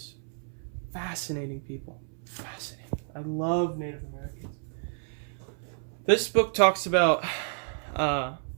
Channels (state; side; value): silent; left; 58 dB below the other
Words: fascinating people. Fascinating. I love Native Americans. This book talks about the